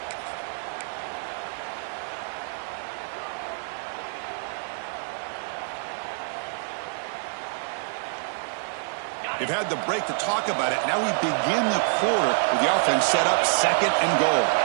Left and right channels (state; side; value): silent; left; 60 dB below the other